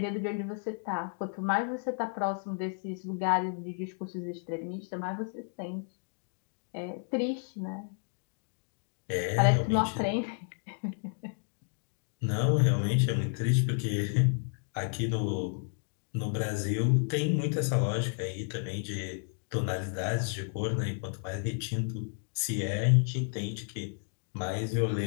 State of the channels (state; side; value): silent; right; 57 dB below the other